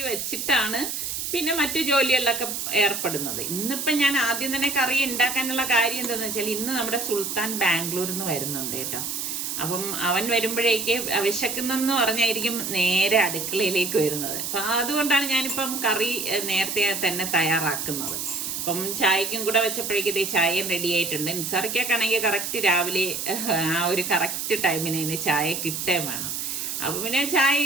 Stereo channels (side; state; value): right; noise; hiss, 3 dB below the sound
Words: വെച്ചിട്ടാണ് പിന്നെ മറ്റു ജോലികളിലൊക്കെ ഏർപ്പെടുന്നത്. ഇന്നിപ്പം ഞാൻ ആദ്യം തന്നെ കറി ഉണ്ടാക്കാനുള്ള കാര്യം എന്താണെന്ന് വെച്ചാൽ ഇന്ന് നമ്മുടെ സുൽത്താൻ ബാംഗ്ലൂരിൽ നിന്ന് വരുന്നുണ്ട് കേട്ടോ. അപ്പം അവൻ വരുമ്പോഴേക്ക് വിശക്കുന്നെന്ന് പറഞ്ഞായിരിക്കും നേരെ അടുക്കളയിലേക്ക് വരുന്നത്. അപ്പം അതുകൊണ്ടാണ് ഞാനിപ്പം കറി നേരത്തെ തന്നെ തയ്യാറാക്കുന്നത്. അപ്പം ചായക്കും കൂടെ വെച്ചപ്പോഴേക്കും ഇതേ ചായയും റെഡി ആയിട്ടുണ്ട്. നിസാറിക്കാണെങ്കിൽ കറക്റ്റ് രാവിലെ ആ ഒരു കറക്റ്റ് ടൈമിന് ചായ കിട്ടേ വേണം. അപ്പൊ പിന്നെ